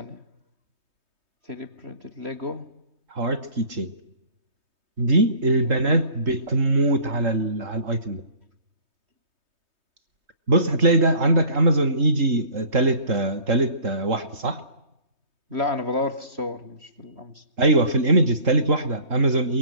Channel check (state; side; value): late; left; 3.2 ms